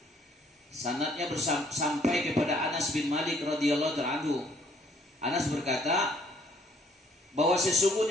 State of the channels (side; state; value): both; normal; correlation 0.62